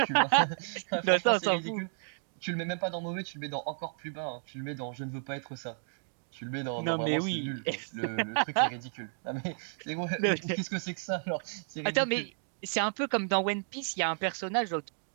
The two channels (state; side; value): silent; left; 56 dB below the other